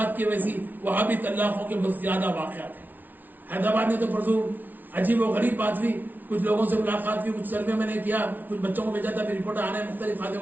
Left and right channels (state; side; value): late; left; 0.083 ms